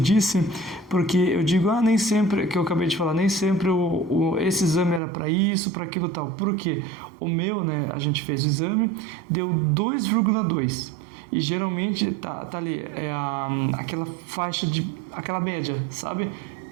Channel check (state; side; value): drops out; left; at 5.0 s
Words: porque eu digo, nem sempre, que eu acabei de falar, nem sempre esse exame era para isso, para aquilo tal. Por quê? O meu, né, a gente fez o exame, deu 2,2. E geralmente tá ali, aquela faixa aquela média, sabe?